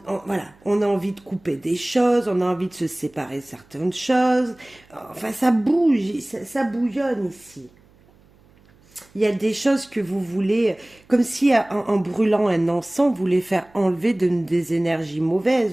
on a envie de couper des choses, on a envie de se séparer de certaines choses. Enfin, ça bouge, ça bouillonne ici. Il y a des choses que vous voulez, comme si en brûlant un encens, vous voulez faire enlever des énergies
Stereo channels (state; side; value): noise; right; hum, 30 dB below the sound